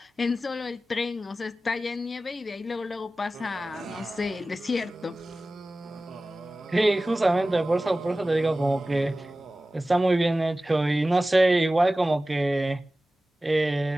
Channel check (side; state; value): both; normal; correlation 0.96